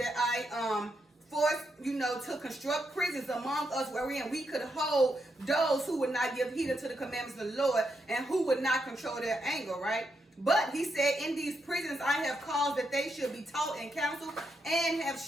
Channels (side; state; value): both; normal; correlation 0.81